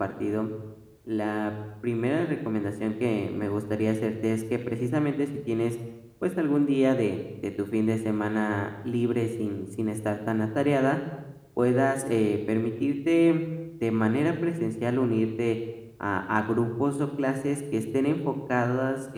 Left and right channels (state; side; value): identical; both; correlation 1.00